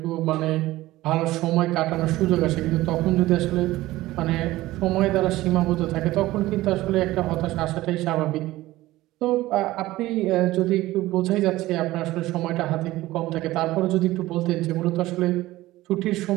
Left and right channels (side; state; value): left; quieter; 17.2 dB